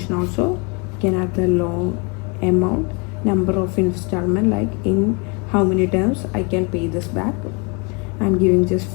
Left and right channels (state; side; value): quieter; right; 32.3 dB